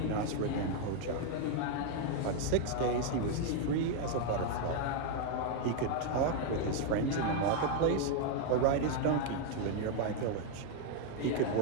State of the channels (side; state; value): both; different; correlation 0.01